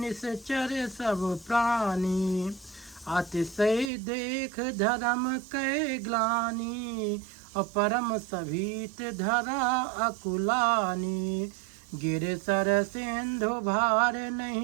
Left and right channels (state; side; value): drops out; left; at 3.9 s